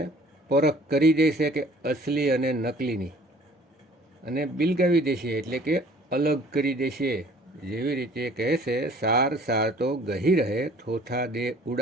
પરખ કરી દેશે કે અસલી અને નકલીની, અને બિલગાવી દેશે, એટલે કે અલગ કરી દેશે. જેવી રીતે કહે છે, સાર સાર તો ગહી રહે, થોથા દે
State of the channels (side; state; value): both; normal; correlation 0.53